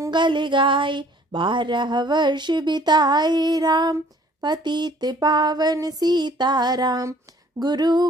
गाए। 12 वर्ष बिताए राम, पतित पावन सीताराम। गुरु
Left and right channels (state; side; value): normal; both; correlation 0.56